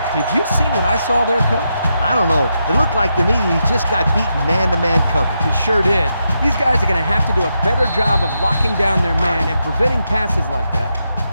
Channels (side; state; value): both; inverted; correlation -0.84